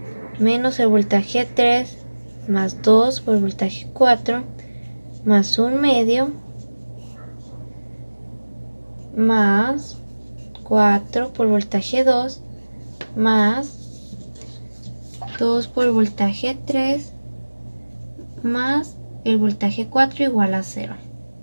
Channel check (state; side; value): inverted; both; correlation -1.00